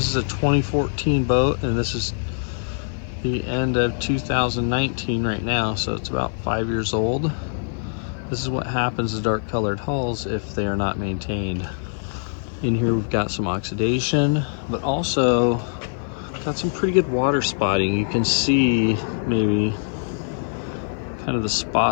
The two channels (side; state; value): right; silent; 61 dB below the other